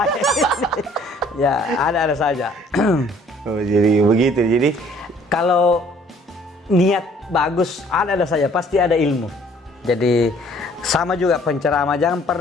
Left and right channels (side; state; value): both; normal; correlation 0.58